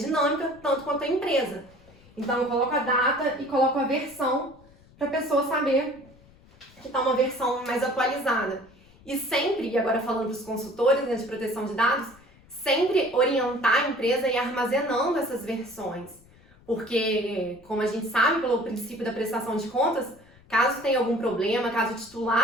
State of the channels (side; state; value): left; noise; rumble, 26 dB below the sound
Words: tanto quanto a empresa. Então eu coloco a data e coloco a versão para a pessoa saber que está uma versão mais atualizada. E sempre, e agora falando para os consultores, né, de proteção de dados, sempre orientar a empresa a ir armazenando essas versões. Porque, como a gente sabe pelo princípio da prestação de contas, caso tenha algum problema, caso o